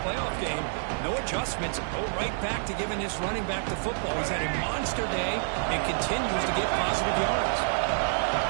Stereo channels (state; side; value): silent; left; 59 dB below the other